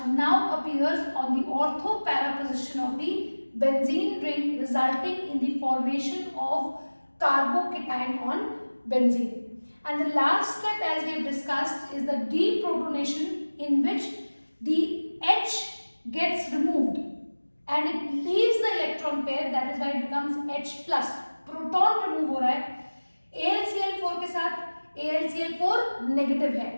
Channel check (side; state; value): both; inverted; correlation -1.00